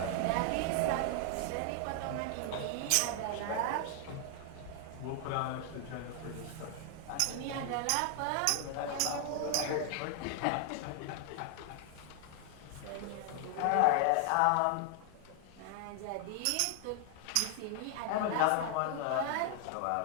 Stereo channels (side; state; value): both; different; correlation 0.00